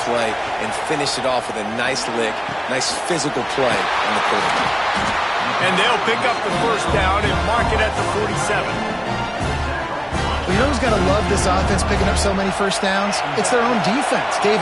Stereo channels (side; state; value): both; identical; correlation 1.00